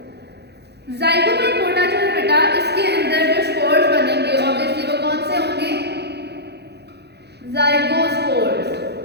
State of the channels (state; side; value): late; left; 0.48 ms